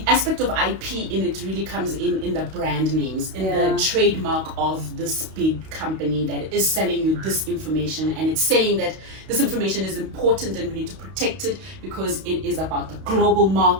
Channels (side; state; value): left; late; 32 ms